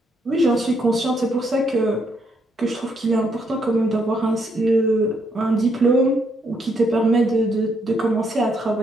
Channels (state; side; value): normal; both; correlation 0.74